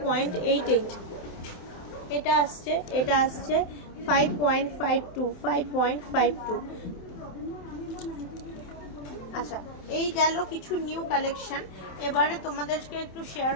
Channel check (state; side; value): late; right; 27 ms